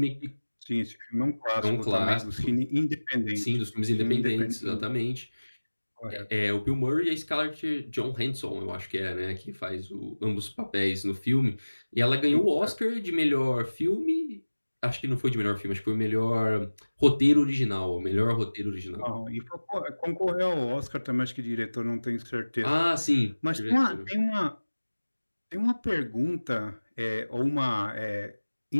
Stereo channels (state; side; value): inverted; both; correlation -1.00